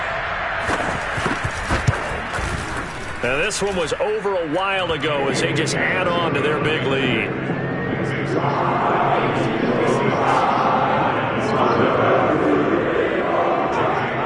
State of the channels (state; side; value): identical; both; correlation 1.00